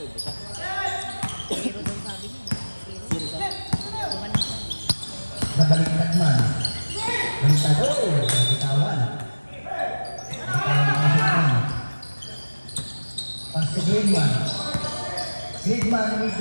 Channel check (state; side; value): inverted; both; correlation -1.00